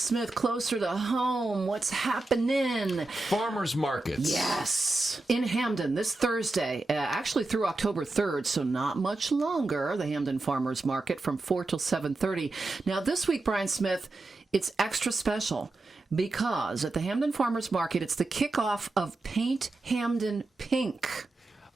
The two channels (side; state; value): left; quieter; 3.1 dB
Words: closer to home. What's happening? Farmers markets. Yes. In Hamden this Thursday, actually through October 3rd, so not much longer, the Hamden Farmers Market from 4 till 7:30. Now, this week, Brian Smith, it's extra special because at the Hamden Farmers Market, it's the kickoff of Paint Hamden Pink.